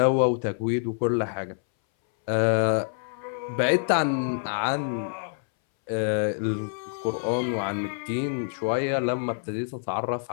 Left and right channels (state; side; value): silent; right; 61 dB below the other